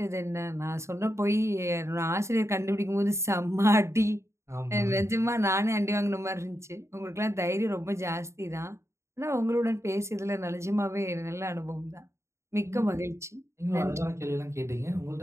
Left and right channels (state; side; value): late; left; 0.14 ms